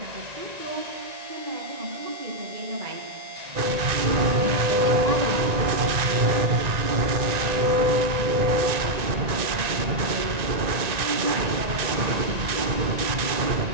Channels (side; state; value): left; late; 1.9 ms